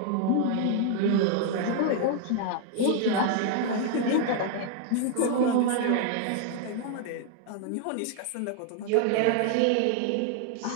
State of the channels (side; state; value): both; different; correlation 0.00